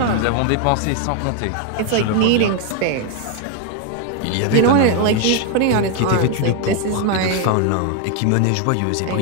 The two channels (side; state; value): both; different; correlation 0.01